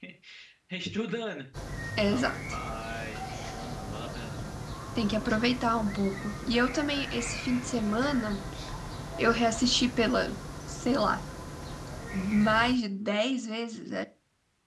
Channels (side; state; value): both; identical; correlation 1.00